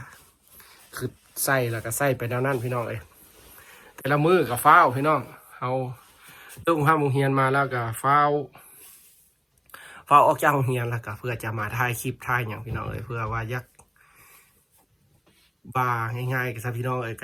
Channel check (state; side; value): identical; both; correlation 1.00